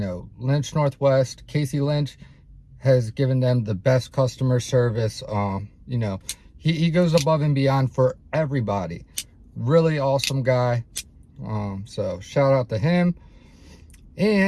Lynch Northwest, Casey Lynch has given them the best customer service. You know, he goes above and beyond for everybody. Really awesome guy. So shout out to him.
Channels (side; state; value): both; identical; correlation 1.00